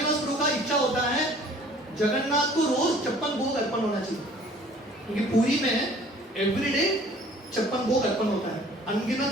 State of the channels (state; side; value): normal; both; correlation 0.52